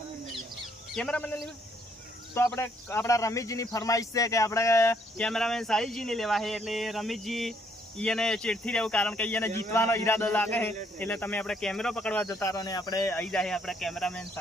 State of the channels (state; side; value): normal; both; correlation 0.69